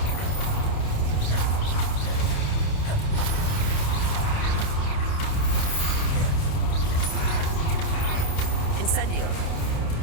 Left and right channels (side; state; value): right; late; 28 ms